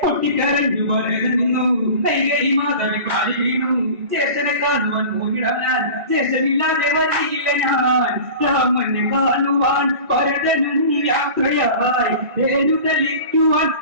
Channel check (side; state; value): left; late; 1.8 ms